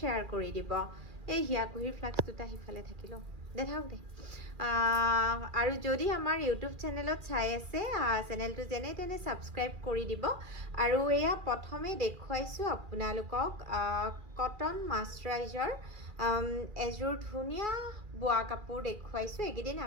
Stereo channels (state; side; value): late; left; 2.4 ms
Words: কৰি দিব এই হিয়াকুহিৰ ফ্লাক্স দুটা হিফালে থাকিলো দেখাওক দে আৰু যদি আমাৰ ইউটিউব চেনেলত চাই আছে চেনেলটো যেনে তেনে সাবস্ক্ৰাইব কৰি দিব আৰু এয়া প্ৰথমে দেখুৱাইছোঁ আপোনালোকক কটন মাস্টাৰাইজাৰ এযোৰ ধুনীয়া বোৱা কাপোৰ দেখুৱাইছোঁ এইকেইদিন